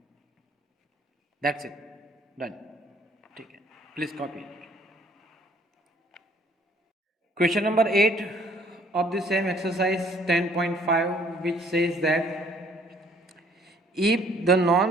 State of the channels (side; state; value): both; normal; correlation 0.60